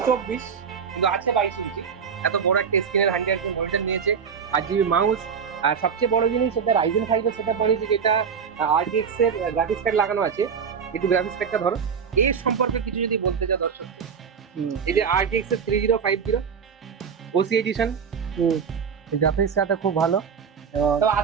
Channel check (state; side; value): quieter; left; 6.6 dB